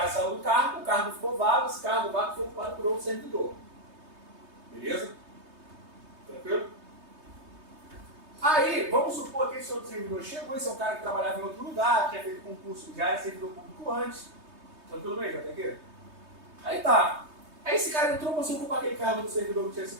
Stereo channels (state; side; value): late; left; 3.2 ms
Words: saiu do cargo, o cargo ficou vago, esse cargo vago foi ocupado por outro servidor. Beleza? Tranquilo? Aí, vamos supor que esse outro servidor chegou, esse é um cara que trabalhava em outro lugar, tinha feito concurso, já era servidor público antes. Tranquilo mesmo, até aqui? Aí tá. Aí esse cara entrou para ocupar aquele cargo do servidor que tinha sido